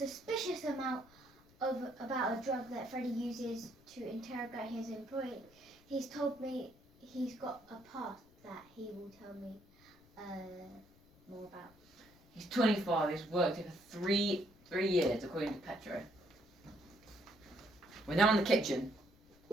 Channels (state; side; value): noise; left; rumble, 28 dB below the sound